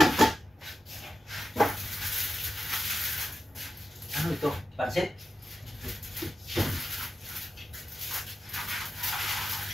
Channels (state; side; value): normal; both; correlation 0.90